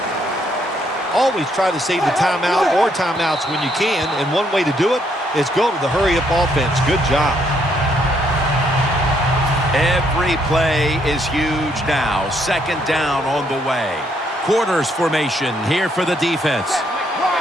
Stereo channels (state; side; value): normal; both; correlation 0.71